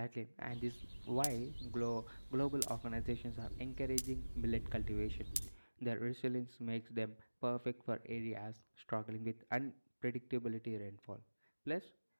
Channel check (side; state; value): both; inverted; correlation -1.00